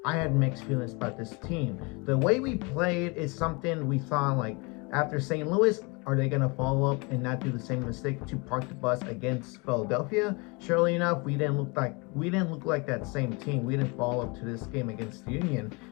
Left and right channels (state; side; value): quieter; right; 29.0 dB